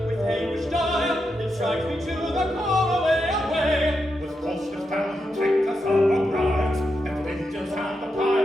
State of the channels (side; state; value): both; normal; correlation 0.85